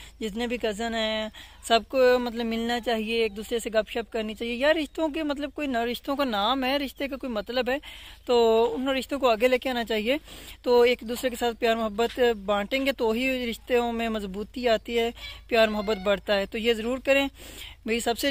जितने भी कज़न हैं, सबको मतलब मिलना चाहिए, एक दूसरे से गपशप करनी चाहिए यार। रिश्तों के मतलब कोई ना, रिश्तों का नाम है, रिश्ते का कोई मतलब है, तो उन रिश्तों को आगे लेके आना चाहिए। तो एक दूसरे के साथ प्यार मोहब्बत बांटेंगे तो ही रिश्तों में मजबूती आती है, प्यार मोहब्बत बढ़ता है। तो ये ज़रूर करें, मेरी सबसे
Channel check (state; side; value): identical; both; correlation 1.00